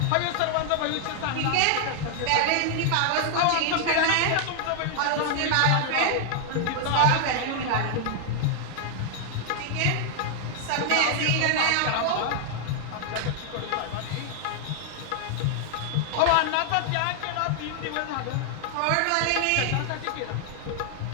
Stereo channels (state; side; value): different; both; correlation 0.00